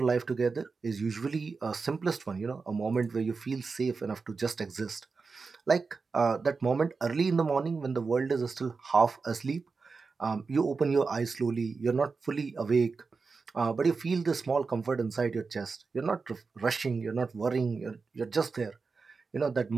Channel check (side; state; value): left; quieter; 4.6 dB